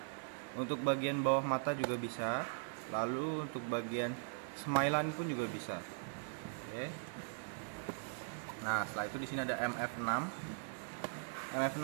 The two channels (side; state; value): left; silent; digital silence